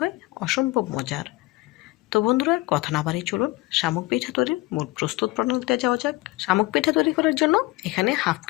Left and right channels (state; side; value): quieter; right; 20.3 dB